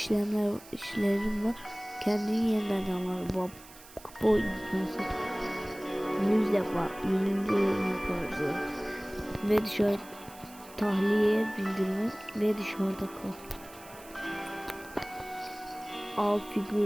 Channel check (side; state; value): right; noise; hiss, 20 dB below the sound